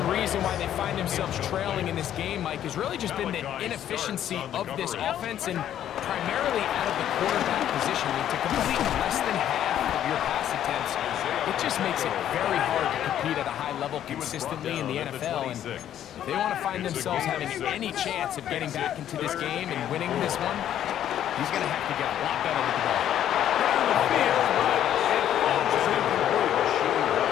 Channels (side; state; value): right; quieter; 10.9 dB